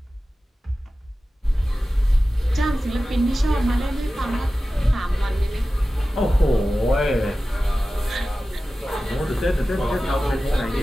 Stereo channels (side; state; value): both; normal; correlation 0.95